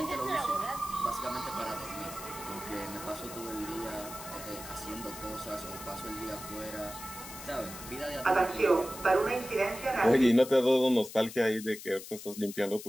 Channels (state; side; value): noise; left; hiss, 12 dB below the sound